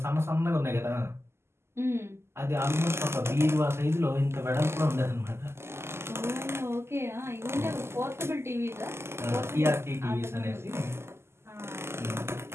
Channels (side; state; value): left; late; 0.12 ms